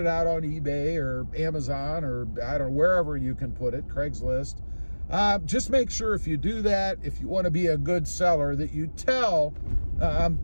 out on eBay or Amazon or I don't know, wherever you can put it, Craigslist. Just make sure if you do that, if you want to be a good seller, that you tell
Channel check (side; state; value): both; inverted; correlation -1.00